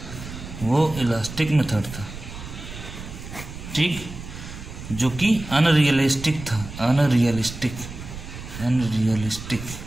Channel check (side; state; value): right; noise; rumble, 11 dB below the sound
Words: वो इलास्टिक मेथड था, ठीक, जो कि अनरियलिस्टिक था, अनरियलिस्टिक।